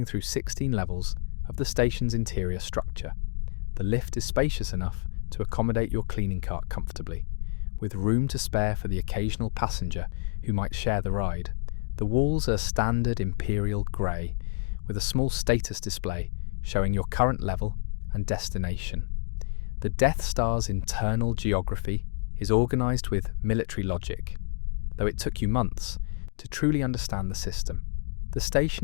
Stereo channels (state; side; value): silent; right; digital silence